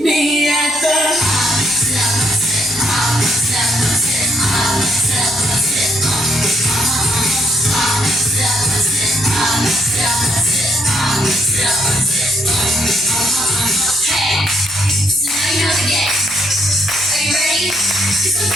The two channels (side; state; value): right; noise; hum, 24 dB below the sound